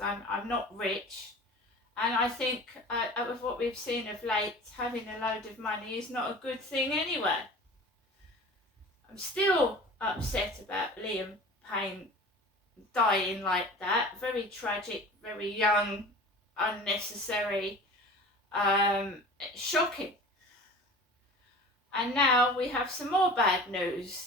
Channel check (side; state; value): both; normal; correlation 0.39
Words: I'm not rich. And I think with what we've seen of late, having a load of money is not a good thing anyway. I'm still upset about Liam Payne dying like that. Very tragic, very young, unnecessary, shocking. And now we have some more bad